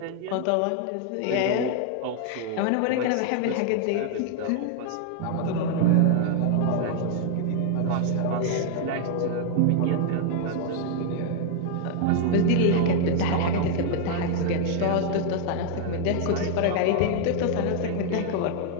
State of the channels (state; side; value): different; both; correlation 0.00